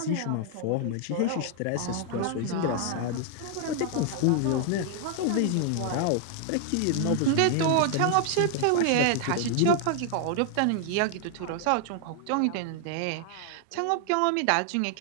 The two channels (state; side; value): different; both; correlation 0.00